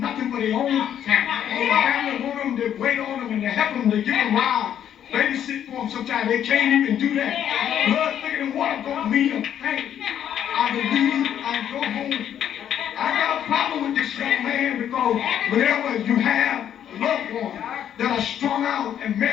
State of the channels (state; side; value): quieter; right; 9.8 dB